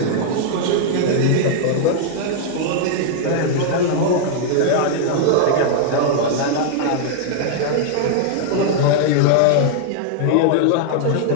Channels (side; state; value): both; different; correlation -0.01